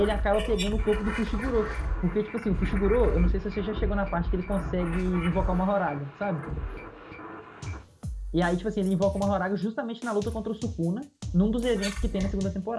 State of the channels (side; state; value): both; identical; correlation 1.00